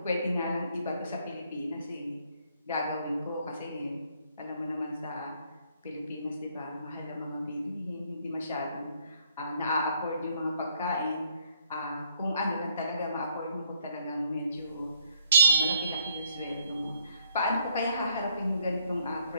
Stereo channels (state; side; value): inverted; both; correlation -0.68